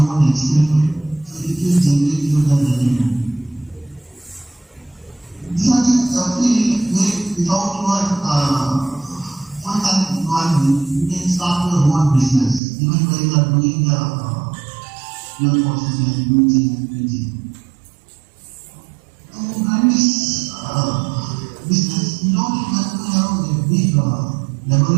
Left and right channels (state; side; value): drops out; left; at 12.6 s